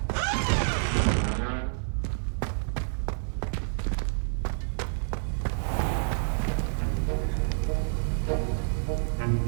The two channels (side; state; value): left; silent; digital silence